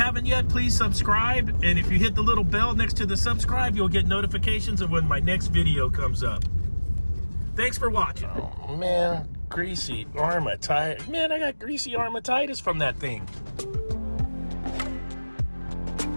yet, please subscribe. And if you hit the little bell next to the subscribe, you'll get notifications of when my next video comes up. Thanks for watching. Oh man, greasy armatitis. Man, I got greasy armatitis from that thing.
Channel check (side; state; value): both; inverted; correlation -1.00